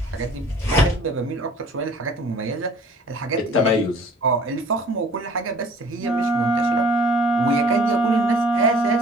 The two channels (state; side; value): normal; both; correlation 0.51